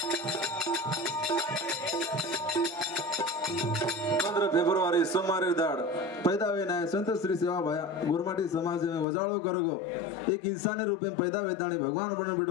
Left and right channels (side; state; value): right; drops out; at 9.1 s